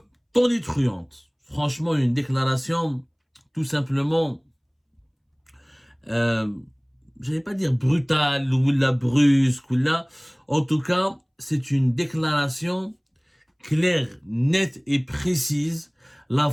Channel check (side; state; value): both; identical; correlation 1.00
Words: tonitruante. Franchement, une déclaration tout simplement, je vais pas dire brutale ou la brusque ou là. En tout cas, c'est une déclaration claire, nette et précise. La